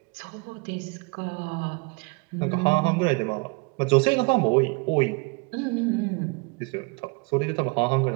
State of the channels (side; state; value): left; quieter; 29.6 dB